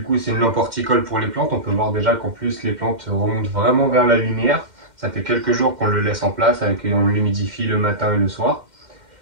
coup c'est une lampe horticole pour les plantes, on peut voir déjà qu'en plus les plantes remontent vraiment vers la lumière. Ça fait quelques jours qu'on le laisse en place, on l'humidifie le matin et le soir.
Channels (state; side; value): late; left; 2.1 ms